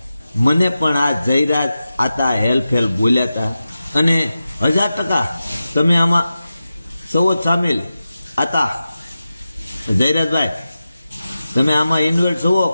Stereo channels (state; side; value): inverted; both; correlation -0.93